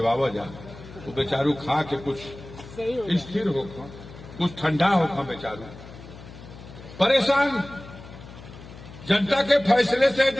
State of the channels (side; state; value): left; noise; hum, 16 dB below the sound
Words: जा, तो बेचारू खा के कुछ स्थिर हो, कुछ ठंडा हो बेचारू। परेशान जनता के फैसले से